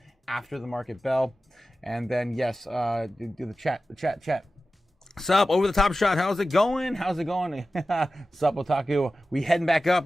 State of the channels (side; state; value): both; normal; correlation 0.94